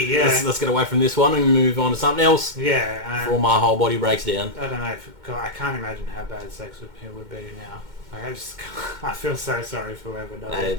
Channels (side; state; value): left; late; 2.1 ms